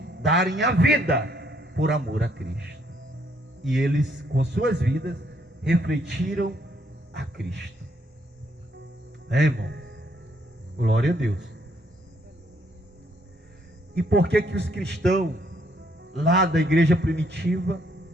darem a vida por amor a Cristo. E eles, com suas vidas, refletiram a Cristo. Irmão? Glória a Deus. E por que os cristãos lá da igreja primitiva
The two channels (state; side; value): normal; both; correlation 0.70